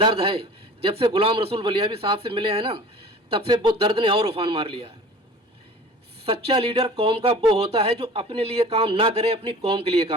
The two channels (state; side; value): normal; both; correlation 0.42